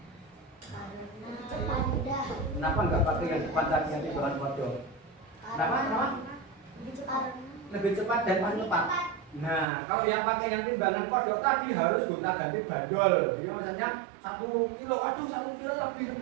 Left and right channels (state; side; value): drops out; left; at 9.7 s